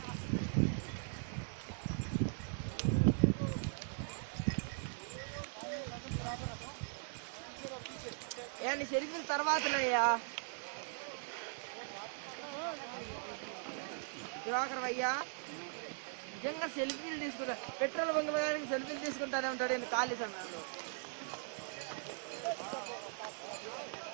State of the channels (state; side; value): silent; left; 51 dB below the other